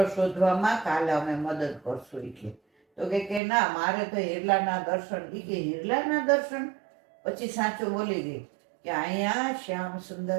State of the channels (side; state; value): left; drops out; at 3.4 s